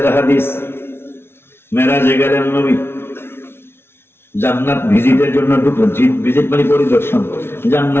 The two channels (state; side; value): late; right; 0.12 ms